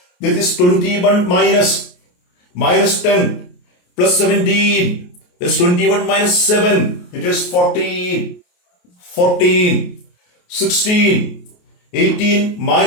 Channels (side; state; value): right; late; 28 ms